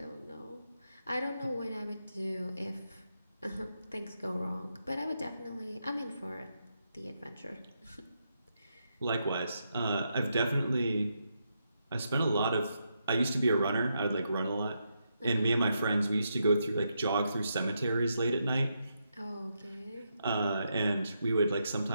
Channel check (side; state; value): both; inverted; correlation -0.82